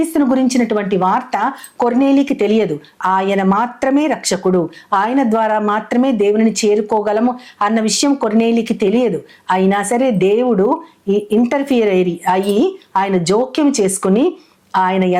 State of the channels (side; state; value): both; identical; correlation 1.00